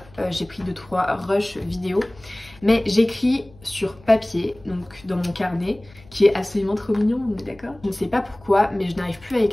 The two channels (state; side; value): noise; left; hum, 25 dB below the sound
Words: j'ai pris 2-3 rushs vidéo, mais j'écris sur papier, donc dans mon carnet, qui est absolument trop mignon, on est d'accord? Je ne sais pas pourquoi, mais je n'arrive plus à